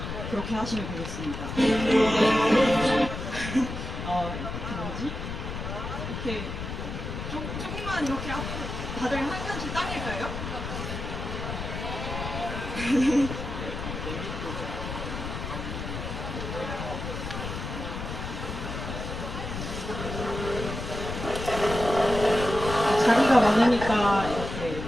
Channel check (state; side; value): noise; left; rumble, 6 dB below the sound